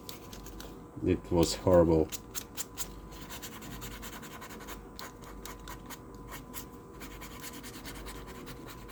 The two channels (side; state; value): both; identical; correlation 1.00